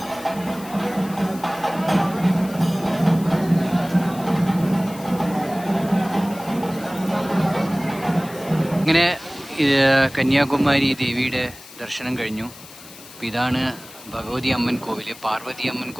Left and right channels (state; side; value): noise; left; hiss, 18 dB below the sound